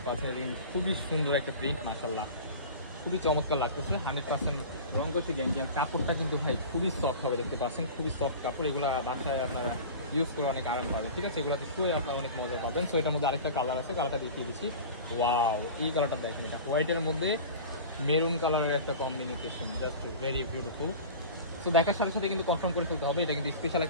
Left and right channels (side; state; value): both; inverted; correlation -0.35